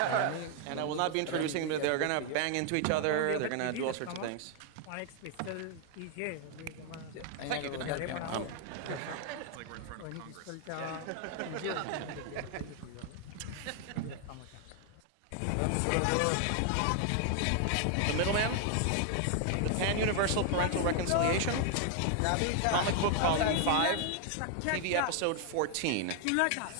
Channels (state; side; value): different; both; correlation 0.00